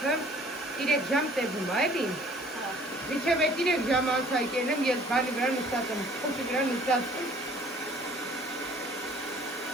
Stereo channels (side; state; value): both; normal; correlation 0.54